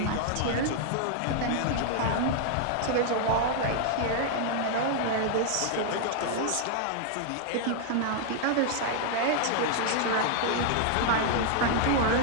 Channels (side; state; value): both; different; correlation 0.00